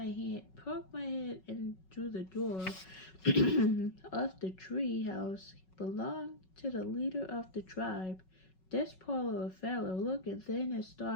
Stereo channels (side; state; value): right; late; 5.4 ms